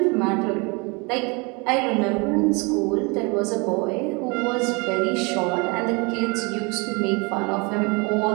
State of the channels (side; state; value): left; quieter; 29.4 dB